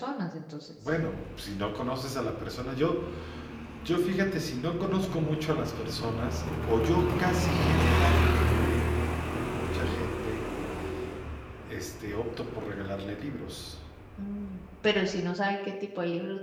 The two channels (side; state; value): both; identical; correlation 1.00